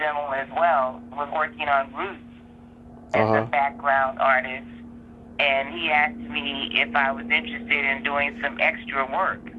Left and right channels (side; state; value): both; identical; correlation 1.00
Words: as well. Was working on Roots as a background artist, and he asked me if I was interested in doing some extra work,